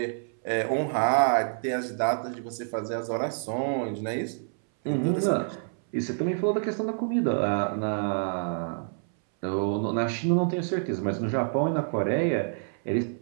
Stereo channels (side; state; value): left; silent; 60 dB below the other